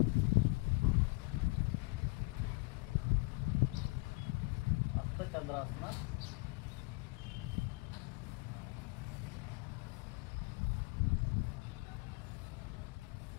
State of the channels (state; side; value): quieter; right; 26.7 dB